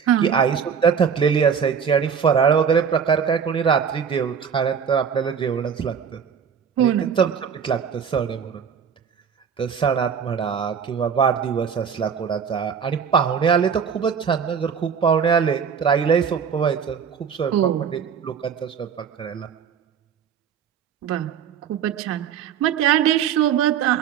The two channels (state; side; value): quieter; left; 7.2 dB